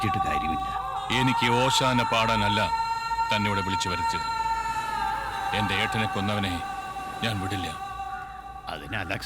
കാര്യമില്ല. എനിക്ക് ഓശാന പാടാനല്ല തന്നെ ഇവിടെ വിളിച്ചു വരുത്തിയത്. എന്റെ ഏട്ടനെ കൊന്നവനെ ഞാൻ വിടില്ല. അതിന്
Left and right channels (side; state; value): both; identical; correlation 1.00